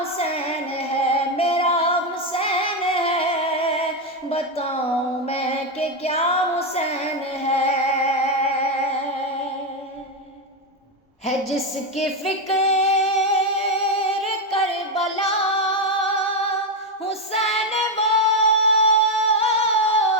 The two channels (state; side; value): normal; both; correlation 0.06